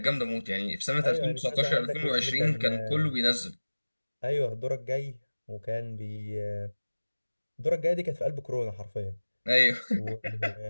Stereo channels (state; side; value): inverted; both; correlation -1.00